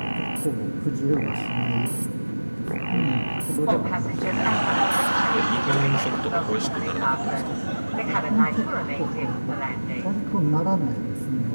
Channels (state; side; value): inverted; both; correlation -1.00